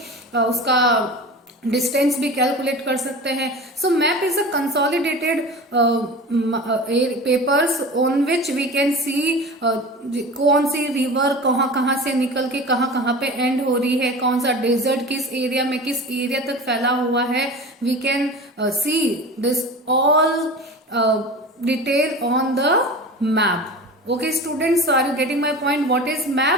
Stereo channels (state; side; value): normal; both; correlation 0.34